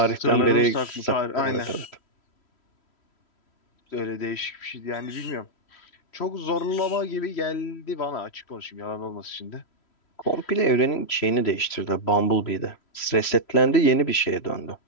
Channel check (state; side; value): late; right; 3.1 ms